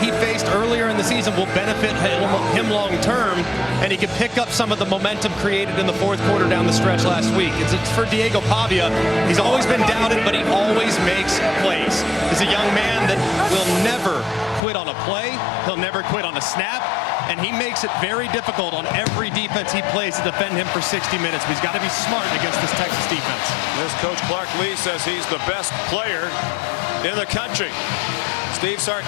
faced earlier in the season will benefit him long term, and he can pick up some of the momentum created in the 4th quarter down the stretch last week. It's for Diego Pavia. He's always been doubted, but he always makes plays. He's a young man that will never quit on a play. He'll never quit on a snap, and he makes it very difficult on every defense he plays to defend him for 60 minutes. But he's got to be smart against this Texas defense. This coach Clark Lee says he's the best player in the country. Steve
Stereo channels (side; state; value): right; drops out; at 14.6 s